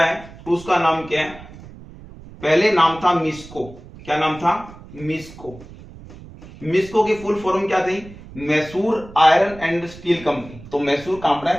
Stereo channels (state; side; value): noise; right; rumble, 18 dB below the sound